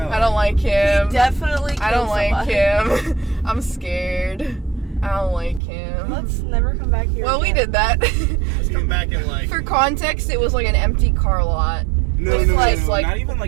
I don't like him. Definitely. I don't killed like somebody. him. I'm scared. I don't like him. Let's never come back here. Well, we again. did that. Let's come back in like. For context, it was like an empty car lot. No, With no, like, no, like not even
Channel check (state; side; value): drops out; left; at 5.6 s